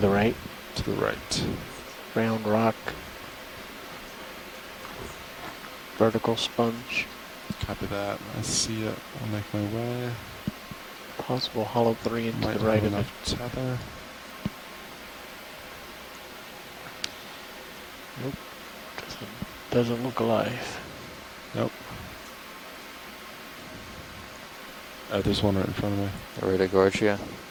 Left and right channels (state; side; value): identical; both; correlation 1.00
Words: right. To the right. Round rock. Vertical sponge. Copy that. I see it. I'll make my way. Possible hollow 3 into Might the right have of it. enough tether. Nope. Doesn't look alive. Nope. There's one right in front of me. Right at Gorge, yeah.